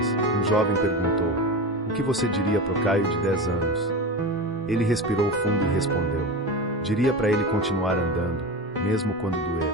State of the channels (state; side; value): normal; both; correlation 0.25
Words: um jovem perguntou: "O que você diria pro Caio de 10 anos?" Ele respirou fundo e respondeu: "Diria para ele continuar andando, mesmo quando